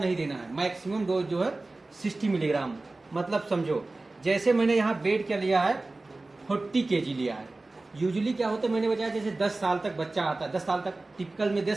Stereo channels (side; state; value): left; quieter; 3.2 dB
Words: देना है। मैक्सिमम डोज जो है 60 मिलीग्राम। मतलब समझो, जैसे मैंने यहाँ वेट क्या लिया है, 40 केजी लिया है। यूजुअली क्या होता है, मैंने बताया जैसे 10 साल तक बच्चा आता है, 10 साल तक टिपिकल में